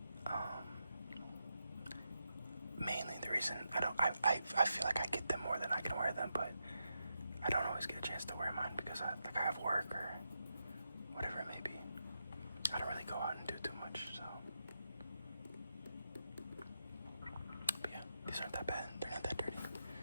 Mainly the reason I feel like I get them more than I can wear them, but I don't always get a chance to wear mine because I have work or whatever it may be. I don't really go out and do too much, so. But yeah, these aren't that bad. They're not that dirty.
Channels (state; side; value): inverted; both; correlation -0.86